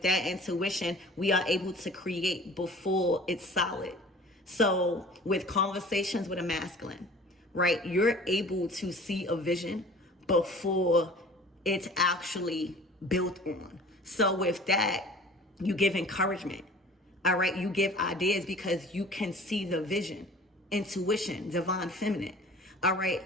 that intuition, we are able to create before it's solid. So with conversations with a masculine, right, you're able to see a vision before it's actually built on. So with that, you give encouragement. All right, you give ideas because you can see the vision, intuition, divine feminine. All right,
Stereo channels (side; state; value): both; normal; correlation 0.45